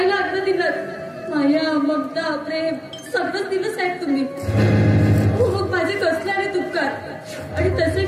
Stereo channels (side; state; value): both; identical; correlation 1.00